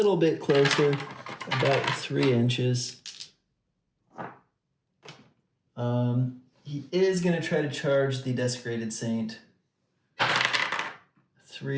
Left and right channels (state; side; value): identical; both; correlation 1.00